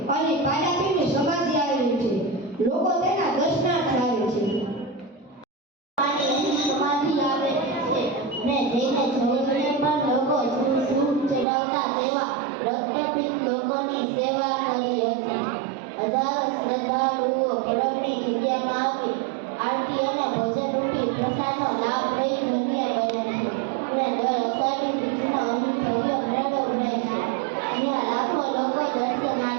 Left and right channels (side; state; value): left; drops out; at 11.5 s